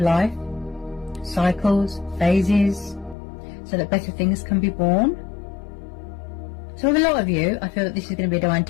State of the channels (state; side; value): drops out; right; at 3.2 s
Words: Cycles, phases, so that better things can be born. So with a lot of you, I feel that this is going to be a divine